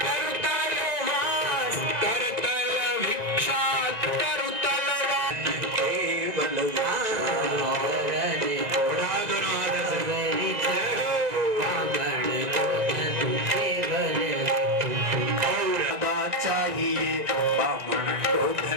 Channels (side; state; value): left; late; 1.9 ms